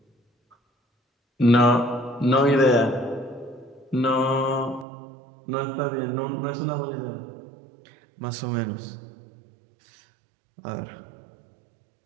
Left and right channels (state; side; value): drops out; left; at 4.9 s